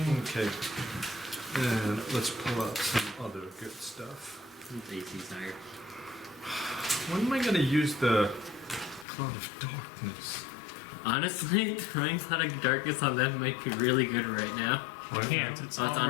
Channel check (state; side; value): drops out; right; at 9.1 s